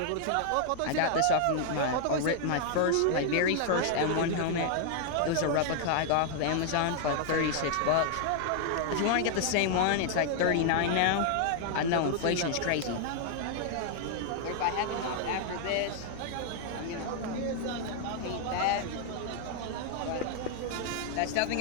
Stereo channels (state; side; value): different; both; correlation 0.00